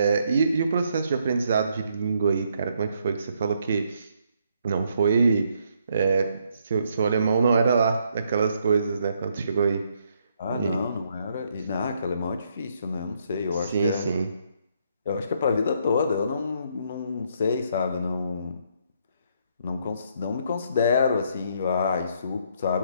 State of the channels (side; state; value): both; inverted; correlation -0.72